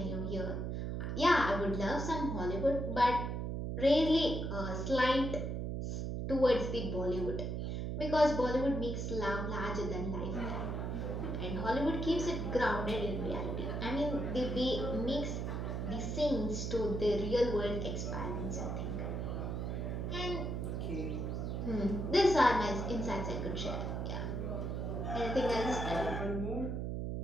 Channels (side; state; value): right; noise; hum, 2 dB below the sound